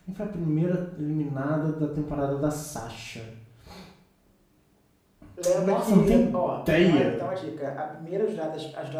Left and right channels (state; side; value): identical; both; correlation 1.00